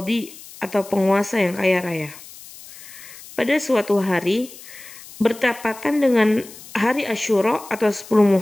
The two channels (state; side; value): noise; left; hiss, 18 dB below the sound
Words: atau penguasa yang kaya raya. Pada suatu hari, bertepatan dengan hari Asyura atau 10